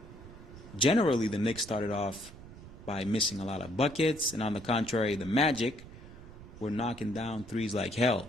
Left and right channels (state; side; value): noise; right; rumble, 16 dB below the sound